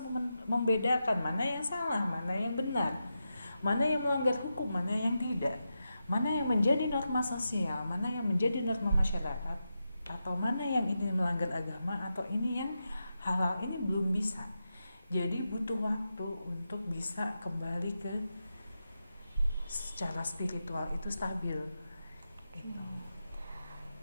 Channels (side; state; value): both; inverted; correlation -0.89